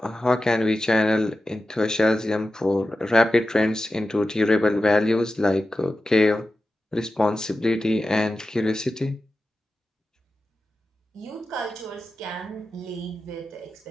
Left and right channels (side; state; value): both; normal; correlation 0.93